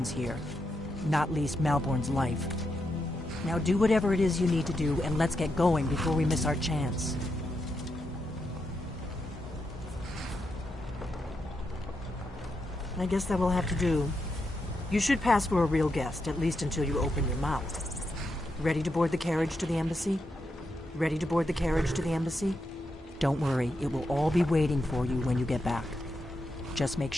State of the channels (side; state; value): both; normal; correlation 0.84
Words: here, not least Malborn's life. Now do whatever it is you need to do, and let's get going before we miss our chance. I guess that will have to do. You should pass for a real guest, at least until you open your mouth. Ready to board the carriage to the embassy? Ready to board the carriage to the embassy? Don't worry, it will all be waiting for you when you get back. Just make